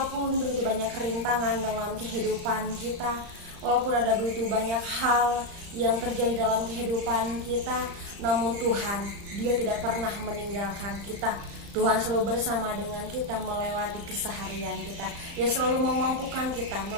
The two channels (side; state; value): left; late; 35 ms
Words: begitu banyak rintangan dalam kehidupan kita, walaupun ada begitu banyak hal yang terjadi dalam kehidupan kita, namun Tuhan, Dia tidak pernah meninggalkan kita. Tuhan selalu bersama dengan kita melewati keseharian kita. Dia selalu memampukan kita